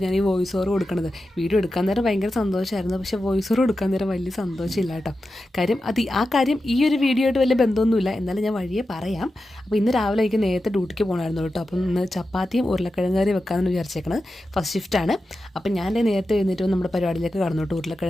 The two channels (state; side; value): normal; both; correlation 0.91